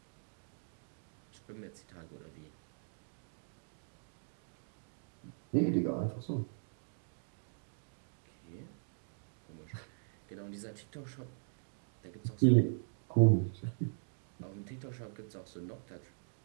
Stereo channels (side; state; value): left; silent; digital silence